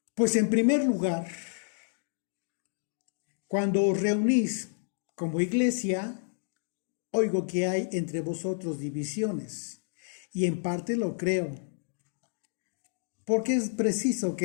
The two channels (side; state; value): right; silent; digital silence